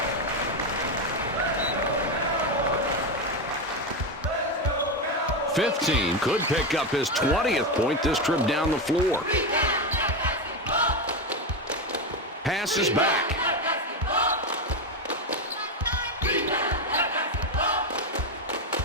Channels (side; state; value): both; normal; correlation 0.12